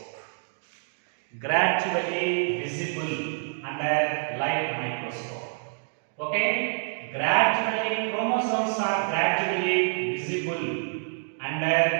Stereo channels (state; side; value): silent; left; digital silence